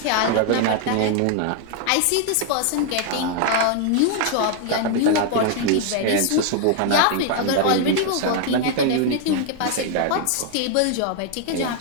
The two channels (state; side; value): different; both; correlation 0.00